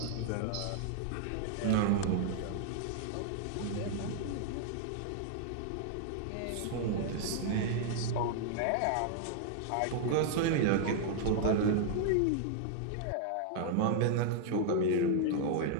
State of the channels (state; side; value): different; both; correlation -0.01